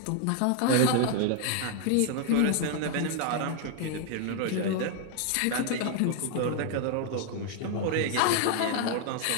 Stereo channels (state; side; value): different; both; correlation 0.00